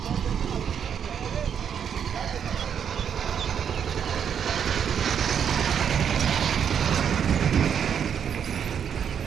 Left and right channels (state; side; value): quieter; left; 8.0 dB